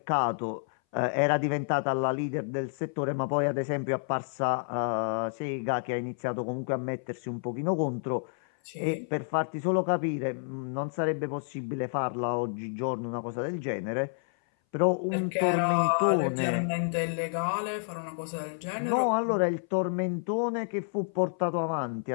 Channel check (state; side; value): silent; right; 58 dB below the other